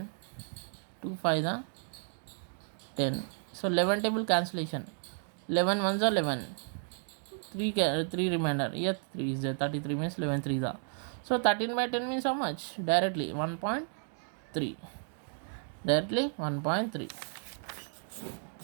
2 5 are 10. So 11 table cancellation. 11 ones are 11. 3 remainder. Yes, 3 is there. 33 means 11 3s are. So 13 by 10 means how much? Directly 1.3. Directly 1.3.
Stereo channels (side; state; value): left; silent; 56 dB below the other